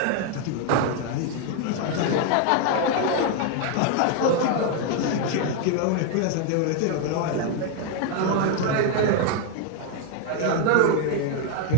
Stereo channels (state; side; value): different; both; correlation 0.00